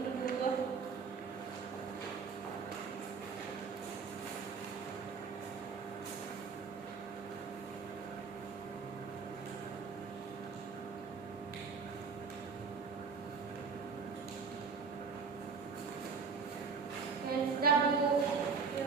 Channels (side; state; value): left; quieter; 5.3 dB